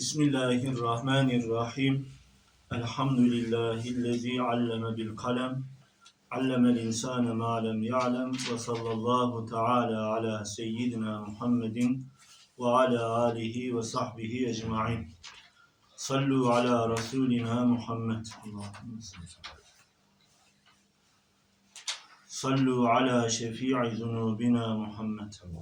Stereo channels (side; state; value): both; identical; correlation 1.00